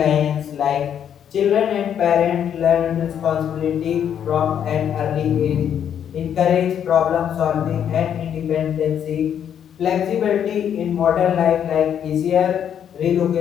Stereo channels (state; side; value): quieter; right; 9.0 dB